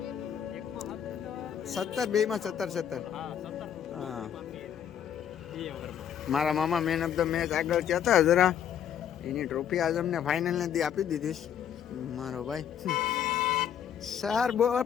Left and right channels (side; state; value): right; quieter; 9.1 dB